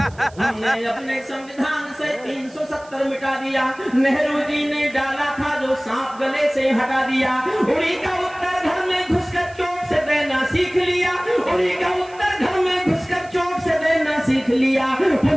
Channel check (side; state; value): right; noise; hiss, 26 dB below the sound